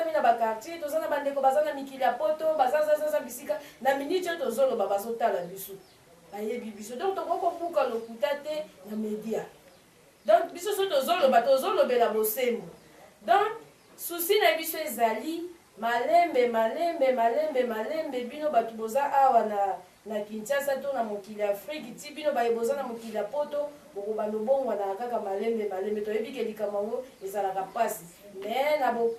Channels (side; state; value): both; identical; correlation 1.00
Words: na bakartier toza na bandeko baza na mikili ya poto bazazazaza bisika na miniti oyo tozoloba bazotala biso bayebi biso donc tokokobuka lokuta te na media donc biso so tozolobela bosembo donc susi na biso ezali malembe bino bato boza awa na Kinshasa to na mokili ya Afrique ti bino boza na mokili ya poto bokobanda obongwana kaka malembe toyebi ke likambo yango ezalaka pasi me na